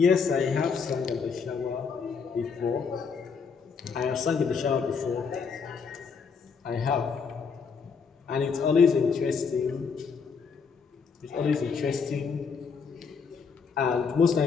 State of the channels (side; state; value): right; quieter; 5.6 dB